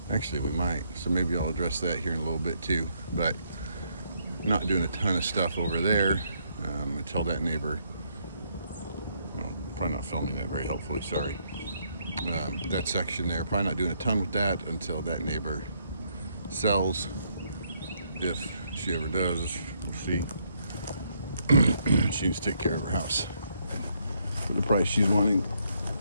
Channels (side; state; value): both; inverted; correlation -0.73